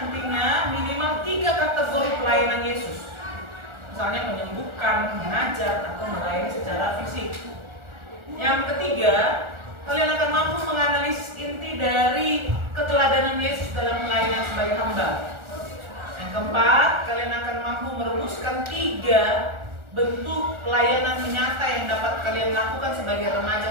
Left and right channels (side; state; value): left; late; 1.4 ms